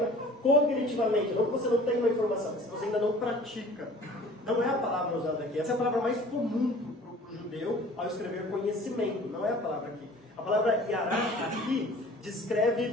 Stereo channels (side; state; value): both; normal; correlation 0.47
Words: cognitivamente, não que você não tenha uma informação, mas que você ainda não pratica. Não é a palavra usada aqui. Essa é a palavra mais comum para o judeu ao escrever conhecimento. Não é a palavra aqui. A palavra yará aqui